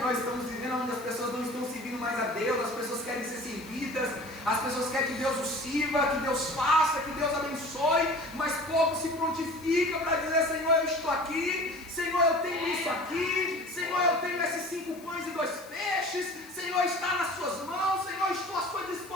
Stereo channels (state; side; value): noise; left; hiss, 22 dB below the sound